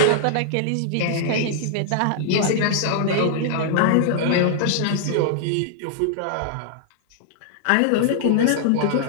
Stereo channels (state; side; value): different; both; correlation -0.01